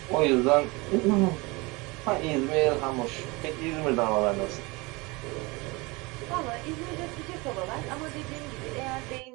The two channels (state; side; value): quieter; left; 25.1 dB